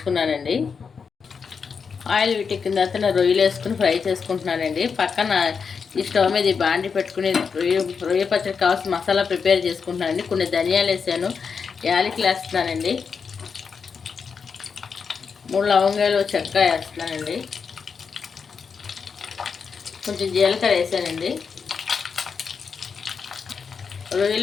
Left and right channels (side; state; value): right; quieter; 5.8 dB